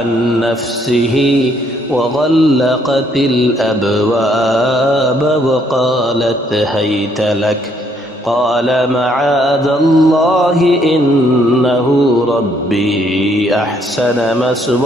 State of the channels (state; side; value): normal; both; correlation 0.69